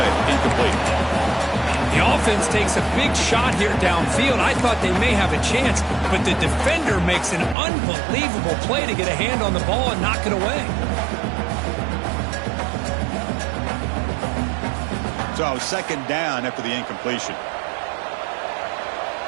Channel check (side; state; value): left; drops out; at 7.6 s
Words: Incomplete. The offense takes a big shot here downfield. I thought they may have a chance, but the defender makes an unbelievable play to get a hand on the ball and knock it away. So second down after the incompletion.